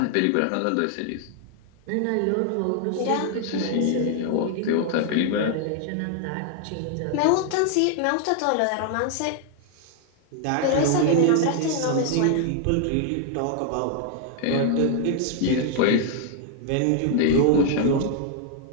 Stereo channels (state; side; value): different; both; correlation 0.00